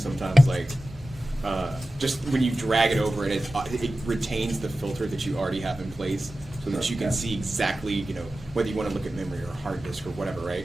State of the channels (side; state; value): both; normal; correlation 0.95